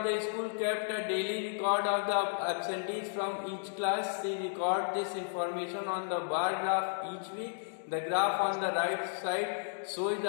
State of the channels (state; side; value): silent; right; digital silence